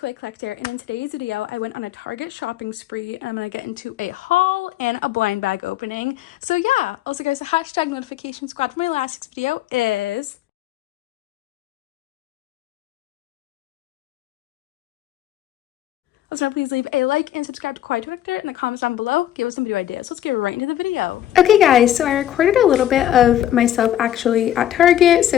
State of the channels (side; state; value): right; quieter; 12.0 dB